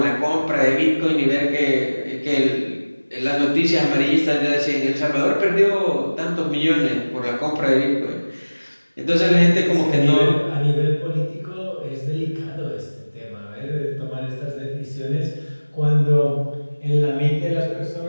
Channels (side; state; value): both; inverted; correlation -1.00